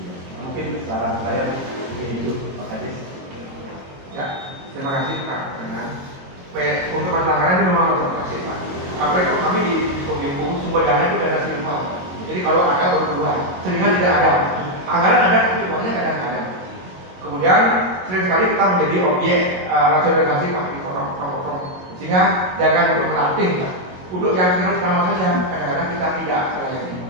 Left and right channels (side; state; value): left; late; 22 ms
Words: Mungkin saran saya mungkin itu Pak Kadis. Ya, terima kasih Pak. Untuk masalah anggaran ini memang terima kasih Pak. Apalagi kami di Kominfo sumber dana itu dana silver. Jadi kalau ada berkeluar, seringnya tidak ada. Anggaran ada tapi uangnya kadang-kadang. Kemudian sering sekali kita menjadi objek rasionalisasi Pak di program. Sehingga jangan untuk melatih Pak. Untuk yang sering sama saja kadang-kadang kita tidak melayani.